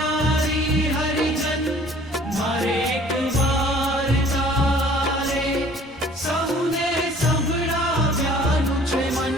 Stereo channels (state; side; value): normal; both; correlation 0.52